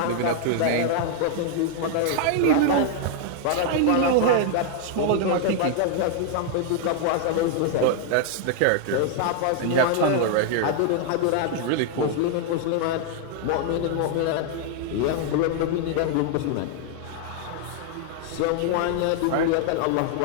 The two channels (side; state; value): both; different; correlation 0.00